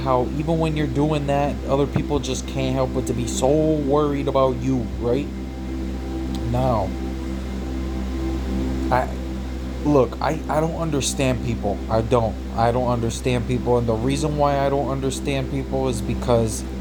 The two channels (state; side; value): identical; both; correlation 1.00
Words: even when you're doing that, other people just can't help but to be so worried about you, right? Now, I I don't understand people. I don't understand people, and the reason why I don't understand people is because